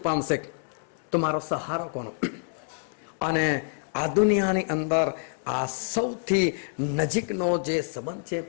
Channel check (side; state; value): right; silent; digital silence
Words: પામશે, તો મારો સહારો કોનો? અને આ દુનિયાની અંદર આ સૌથી નજીકનો જે સંબંધ છે